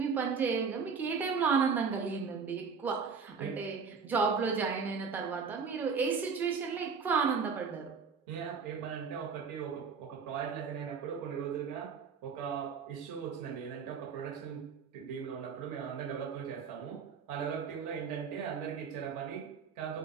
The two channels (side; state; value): left; quieter; 5.7 dB